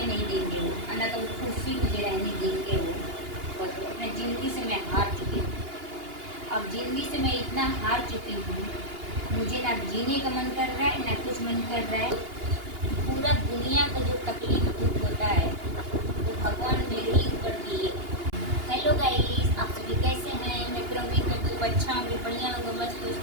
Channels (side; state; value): left; late; 2.8 ms